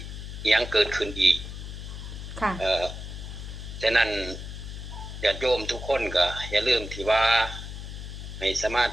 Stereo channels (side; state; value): left; noise; hum, 9 dB below the sound